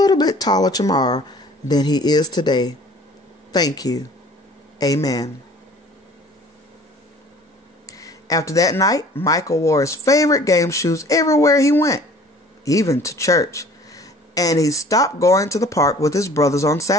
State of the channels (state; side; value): normal; both; correlation 0.50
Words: bit taller tomorrow than he is today? Thank you. Amen. After that night, Michael wore his favorite game shoes everywhere he went, even to church. And he stopped going to the park with his brothers on